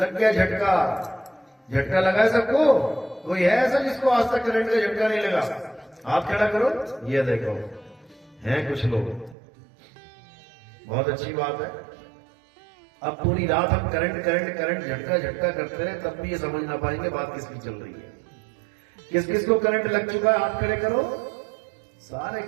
गया झटका। झटका लगा है सबको? कोई है ऐसा जिसको आज तक करंट का झटका नहीं लगा? हाथ खड़ा करो, ये देखो हैं कुछ लोग, बहुत अच्छी बात है। अब पूरी रात हम करंट करंट करंट झटका झटका करते रहे तब भी ये समझ ना पाएंगे बात किसकी चल रही है। किस किस को करंट लग चुका है, हाथ खड़े करो। सारे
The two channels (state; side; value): drops out; left; at 9.3 s